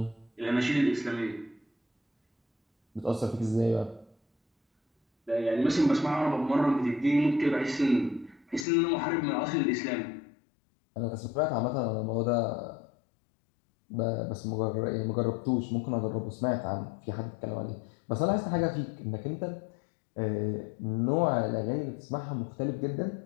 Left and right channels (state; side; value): drops out; right; at 8.7 s